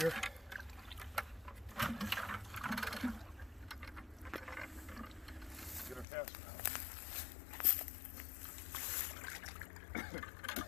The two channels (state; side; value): drops out; right; at 6.1 s